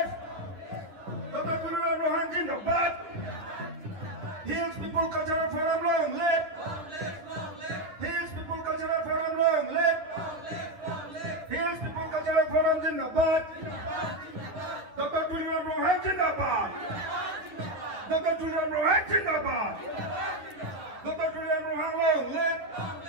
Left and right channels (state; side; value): late; left; 10 ms